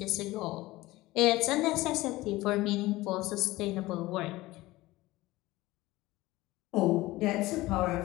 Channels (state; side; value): quieter; right; 18.7 dB